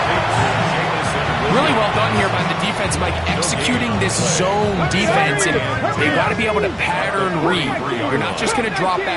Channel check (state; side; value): identical; both; correlation 1.00